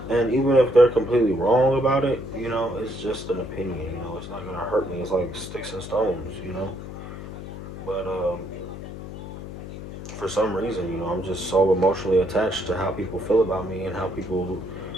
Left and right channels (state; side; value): noise; left; hum, 10 dB below the sound